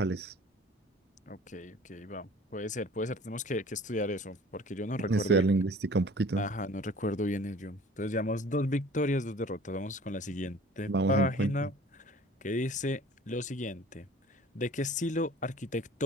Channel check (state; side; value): normal; both; correlation 0.48